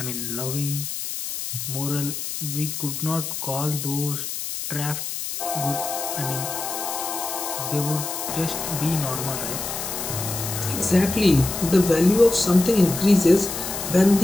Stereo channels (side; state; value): left; noise; hiss, 5 dB below the sound